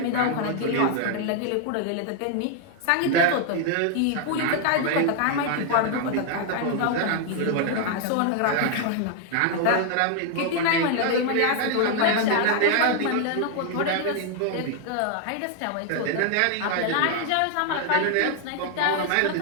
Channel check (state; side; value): different; both; correlation 0.00